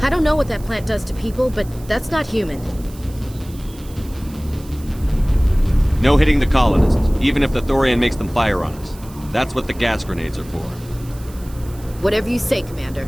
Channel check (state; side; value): noise; right; hiss, 22 dB below the sound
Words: don't know what that plant does to people, but that's not human. No hitting the colonists, even if the Thorian makes them fire on us. That's what the gas grenades are for. Whatever you say, Commander.